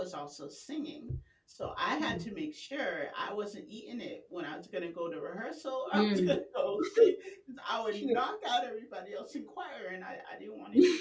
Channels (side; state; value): both; identical; correlation 1.00